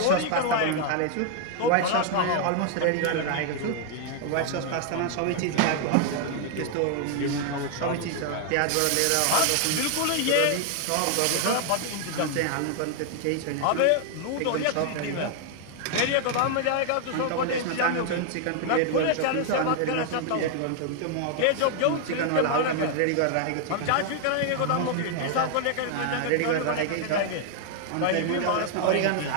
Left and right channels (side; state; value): both; different; correlation 0.00